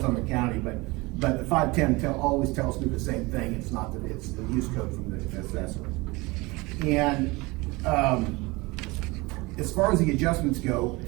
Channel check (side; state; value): left; quieter; 23.7 dB